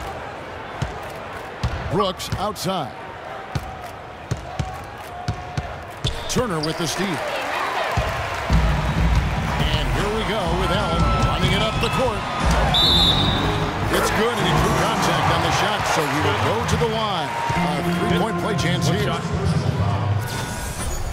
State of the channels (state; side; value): identical; both; correlation 1.00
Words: Brooks outside. Turner with the steal. And here we go with Allen running it up the court. It's good, and he drew contact on the shot, so he will go to the line. A three-point play chance here.